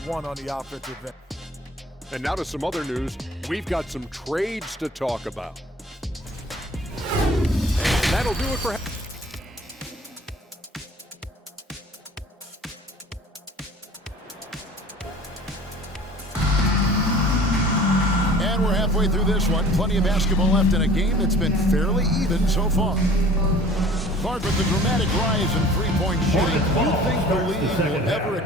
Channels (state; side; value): normal; both; correlation 0.48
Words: want on the offensive end. And now to some other news. We've got some trades to talk about. And that'll do it for... And we're halfway through this one. Plenty of basketball left in a game that's been fairly even so far. Clark, with the dramatic rise in three-point shooting, do you think the league will ever